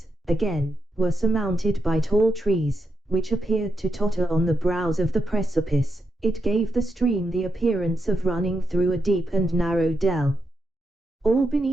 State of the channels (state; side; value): normal; both; correlation 0.83